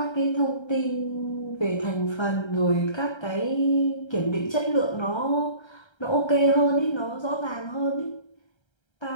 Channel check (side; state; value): right; late; 1.3 ms